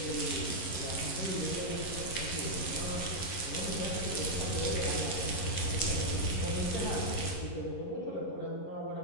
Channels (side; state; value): right; late; 11 ms